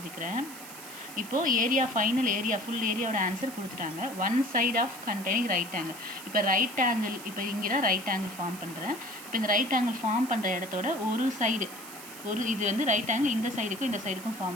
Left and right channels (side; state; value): right; noise; hiss, 14 dB below the sound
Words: இப்போது ஏரியா ஃபைனல் ஏரியா ஃபுல் ஏரியாவோட ஆன்சர் கொடுத்துட்டாங்க. One side of containing right angle. இப்போ ரைட் ஆங்கிள் இப்போ இங்கே தான் ரைட் ஆங்கிள் ஃபார்ம் பண்ணுறேன். இப்போ இந்த ரைட் ஆங்கிள் ஃபார்ம் பண்ணுற இடத்தோட ஒரு சைடு இது வந்து ரைட் ஆங்கிள் இந்த சைடுக்கும் இந்த சைடுக்கும்